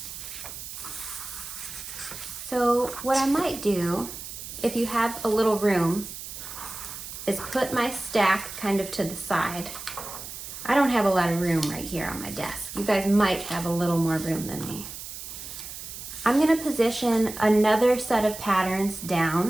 So what I might do, if you have a little room, is put my stack kind of to the side. I don't have a lot of room right here on my desk. You guys might have a little more room than me. I'm gonna position another set of patterns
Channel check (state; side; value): noise; right; hiss, 10 dB below the sound